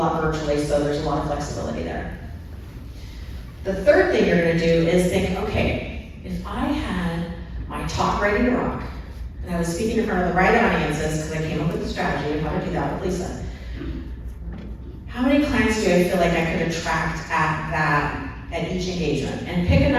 virtually, so there's a lot of flexibility there. The third thing you're gonna do is think, okay, if I had my talk ready to rock, and I was speaking in front of the right audiences, because I came up with a strategy of how to do that with Leisa, how many clients do I feel like I could attract at each engagement? And pick a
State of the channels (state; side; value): identical; both; correlation 1.00